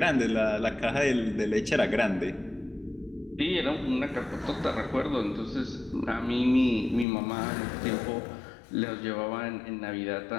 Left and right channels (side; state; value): right; drops out; at 7.1 s